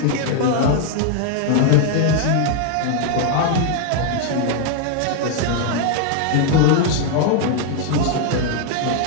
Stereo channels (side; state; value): both; different; correlation 0.00